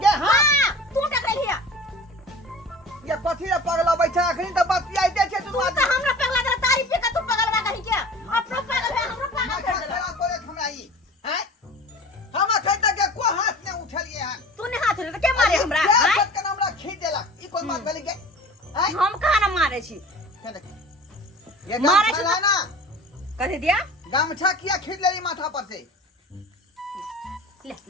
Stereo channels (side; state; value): both; normal; correlation 0.41